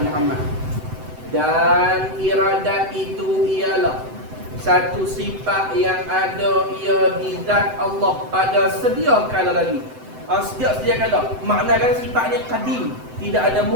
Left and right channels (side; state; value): left; late; 7.8 ms